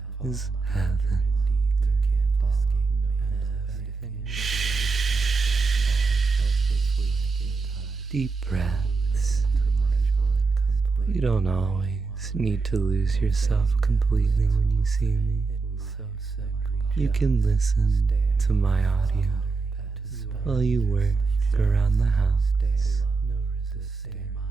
is heaven. Deep breaths. You don't always need to lose yourself completely when you see me. You can listen to my audio while you work around the house.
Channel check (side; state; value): left; quieter; 4.3 dB